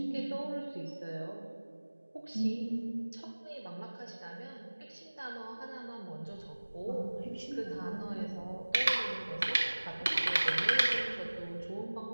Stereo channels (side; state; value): both; inverted; correlation -1.00